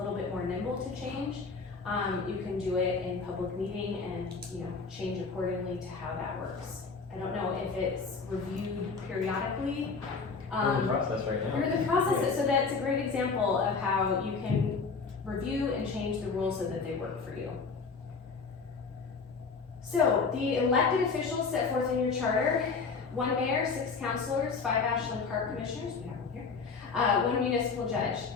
bit more nimble to change. You can do it in public meeting and change accordingly to how that works. I don't know if it's reviewed periodically. We're in the process right now. You're in the process, so that's a great example of how you can review and change the rules so that they work for you. So the elected officials set forth in your charter: 1 mayor, 6 councilors, 5 Ashland Park commissioners, we have them here, 1 municipal judge.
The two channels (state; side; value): quieter; right; 4.8 dB